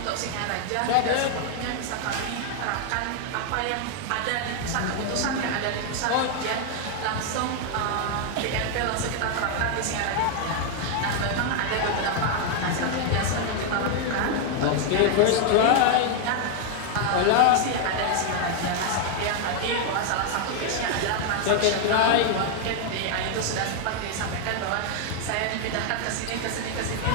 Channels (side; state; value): both; different; correlation 0.00